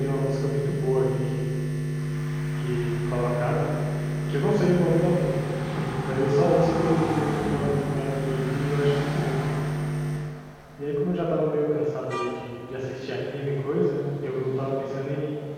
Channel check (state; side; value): identical; both; correlation 1.00